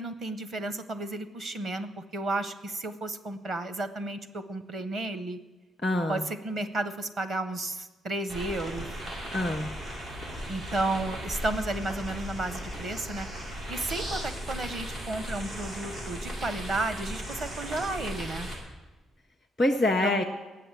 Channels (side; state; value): both; normal; correlation 0.74